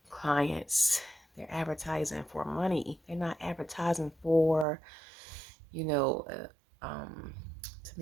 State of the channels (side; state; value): left; drops out; at 4.7 s